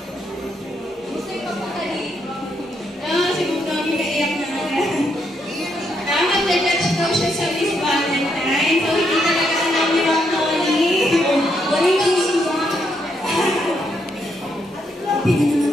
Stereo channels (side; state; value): both; normal; correlation 0.77